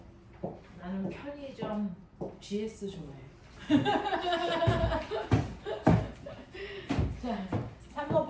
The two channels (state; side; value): identical; both; correlation 1.00